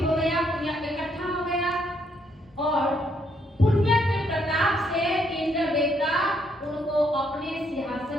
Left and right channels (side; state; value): both; normal; correlation 0.72